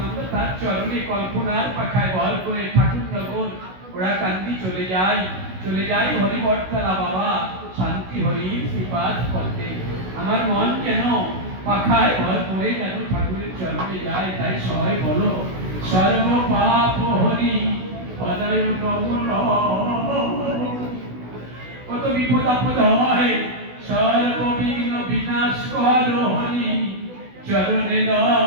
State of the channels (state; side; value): late; left; 16 ms